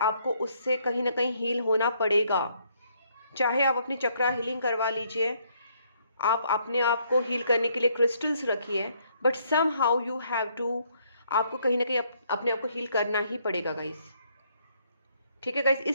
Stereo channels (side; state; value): both; inverted; correlation -0.69